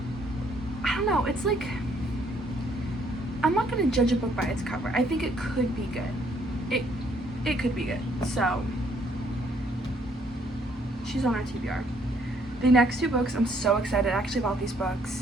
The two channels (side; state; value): both; normal; correlation 0.67